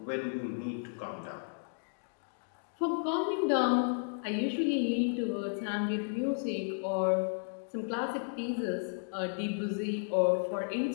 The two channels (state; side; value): silent; right; digital silence